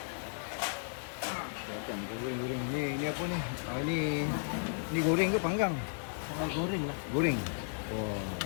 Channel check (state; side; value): silent; right; 55 dB below the other